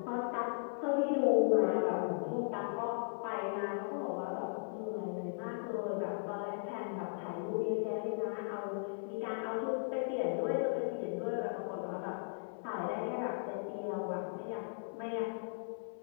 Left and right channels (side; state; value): right; silent; digital silence